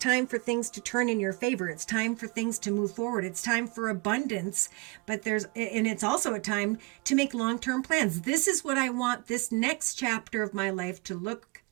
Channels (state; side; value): quieter; left; 28.3 dB